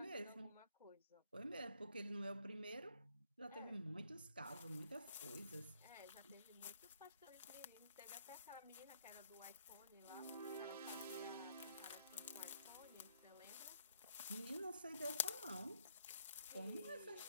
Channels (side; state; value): both; inverted; correlation -0.67